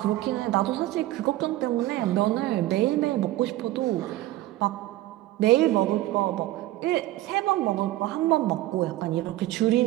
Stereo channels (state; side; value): quieter; left; 16.1 dB